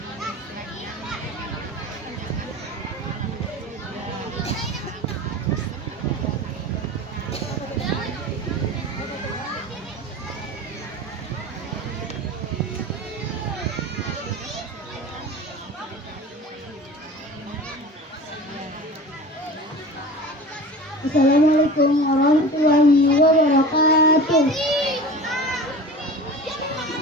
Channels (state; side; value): normal; both; correlation 0.35